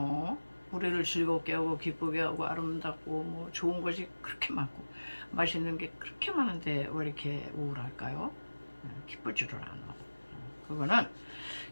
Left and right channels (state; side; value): inverted; both; correlation -1.00